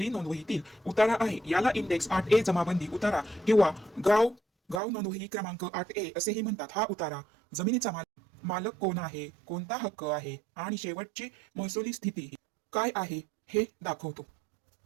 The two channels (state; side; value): drops out; left; at 4.8 s